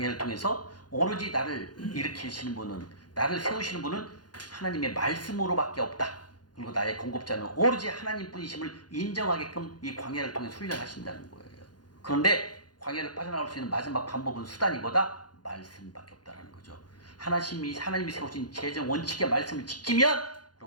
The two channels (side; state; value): right; late; 0.69 ms